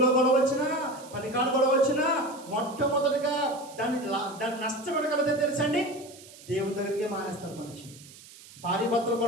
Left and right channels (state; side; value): noise; right; hiss, 20 dB below the sound